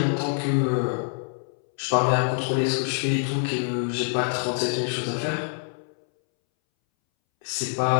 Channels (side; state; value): right; silent; 61 dB below the other